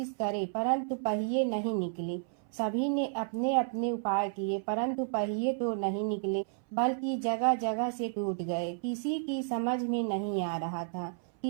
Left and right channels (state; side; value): silent; left; 57 dB below the other